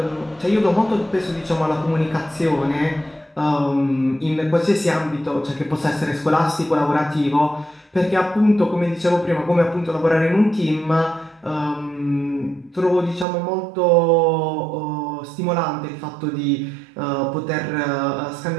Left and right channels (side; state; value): left; drops out; at 13.2 s